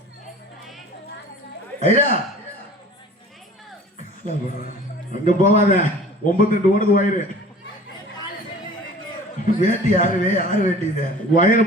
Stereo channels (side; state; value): both; normal; correlation 0.45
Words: ஐயா அங்க போவாத 92 ஓடுது வயிறு. வேட்டி யாரு வேட்டி இது வயிறு